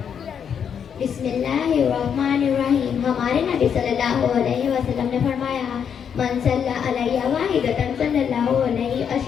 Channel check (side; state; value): right; quieter; 7.7 dB